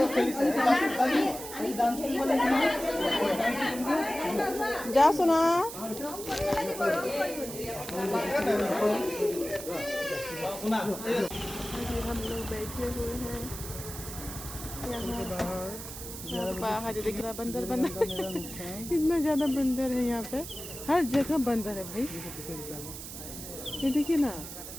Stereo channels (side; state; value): right; noise; hiss, 10 dB below the sound